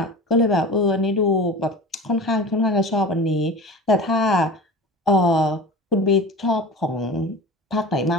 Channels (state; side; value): normal; both; correlation 0.34